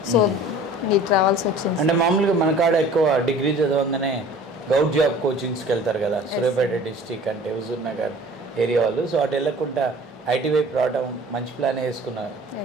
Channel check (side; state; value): both; normal; correlation 0.46